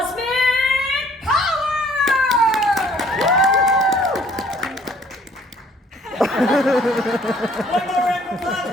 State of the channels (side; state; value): both; normal; correlation 0.58